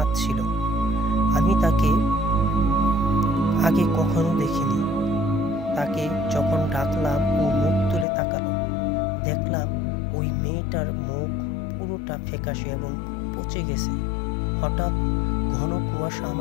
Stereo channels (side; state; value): right; drops out; at 8.1 s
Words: আমি তাকে আগে কখনো দেখিনি। তাকে যখন ডাকলাম ও মুখ তুলে তাকালো। দেখলাম ওই মেয়েটার মুখ পুরোটা ফ্যাকাশে এবং পচে গেছে। হঠাৎ ঘন কুয়াশা